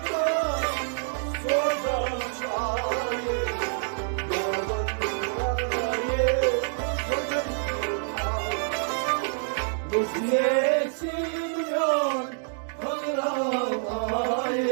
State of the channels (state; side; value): silent; left; digital silence